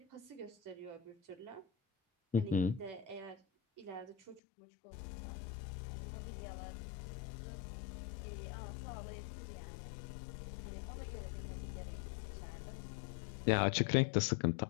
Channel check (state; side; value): drops out; right; at 4.4 s